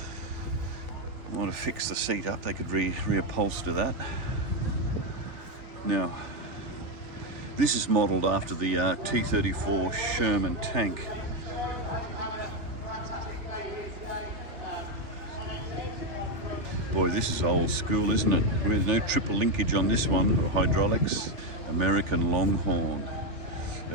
I want to fix the seat up. They could reupholster that. Now, this is modelled after the T-34 Sherman tank. Boy, this is old school, isn't it? There's no triple linkage on this one, or hydraulics. American Longhorn,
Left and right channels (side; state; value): left; late; 3.4 ms